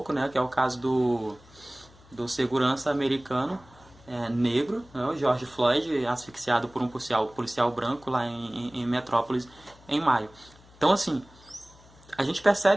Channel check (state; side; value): noise; left; hum, 25 dB below the sound